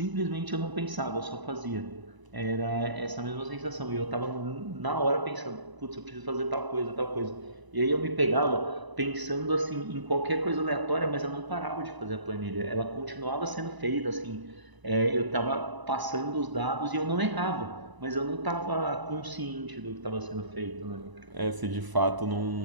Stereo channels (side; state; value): left; late; 1.0 ms